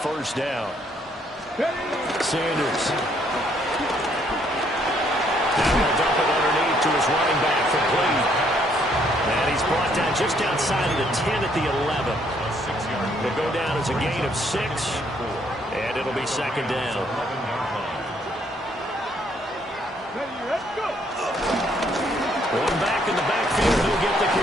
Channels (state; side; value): normal; both; correlation 0.68